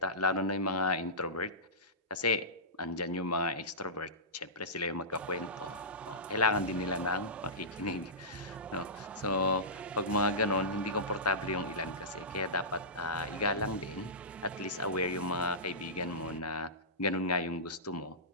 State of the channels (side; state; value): both; normal; correlation -0.19